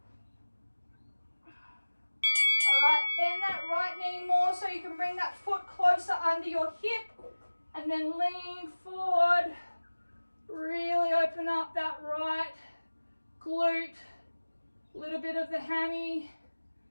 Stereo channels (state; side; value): inverted; both; correlation -1.00